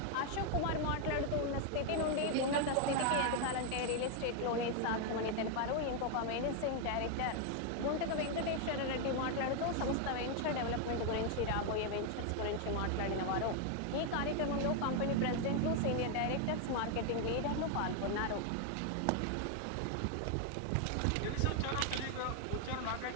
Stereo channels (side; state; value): both; different; correlation 0.00